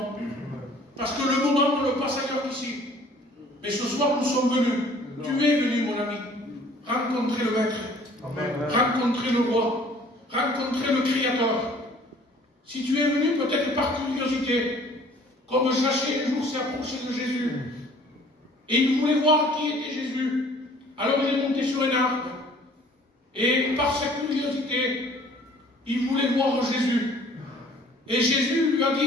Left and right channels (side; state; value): both; normal; correlation 0.53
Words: Parce que le moment ne le passe ailleurs qu'ici. Mais ce soir, nous sommes venus. Tu es venu, mon ami, rencontrer le Maître, rencontrer le Roi, rencontrer le Créateur. Si tu es venu peut-être par curiosité, comme Zachée un jour s'est approché de Jésus, et il voulait voir qui était Jésus, alors il est monté sur un arbre, et par sa curiosité, il voulait voir Jésus. Et Jésus lui a